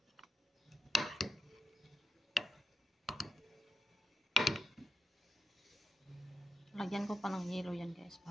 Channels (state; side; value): normal; both; correlation 0.82